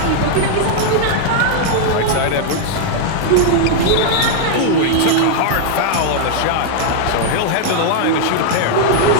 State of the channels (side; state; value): both; different; correlation 0.00